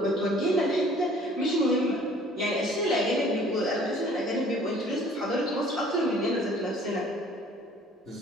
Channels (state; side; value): normal; both; correlation 0.54